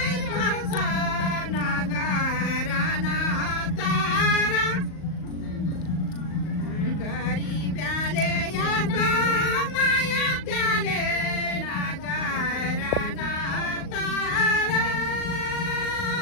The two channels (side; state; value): right; late; 38 ms